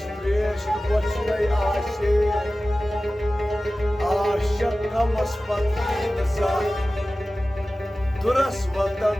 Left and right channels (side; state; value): both; normal; correlation 0.96